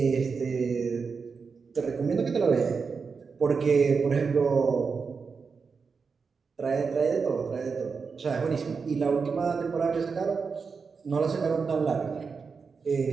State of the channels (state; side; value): quieter; left; 5.2 dB